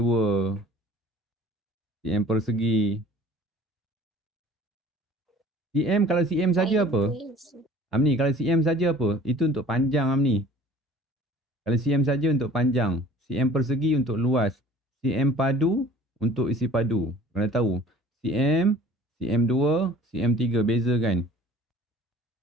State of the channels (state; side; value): normal; both; correlation 0.48